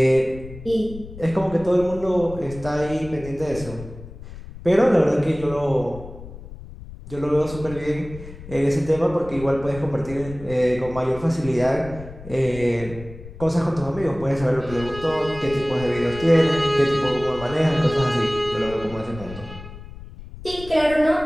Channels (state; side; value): noise; left; rumble, 14 dB below the sound